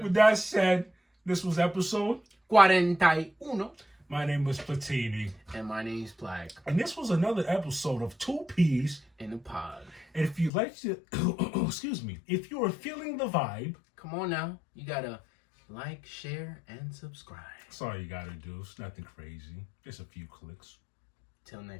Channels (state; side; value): drops out; right; at 10.5 s